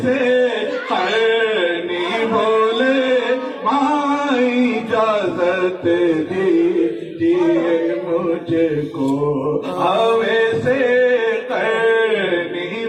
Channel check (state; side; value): identical; both; correlation 1.00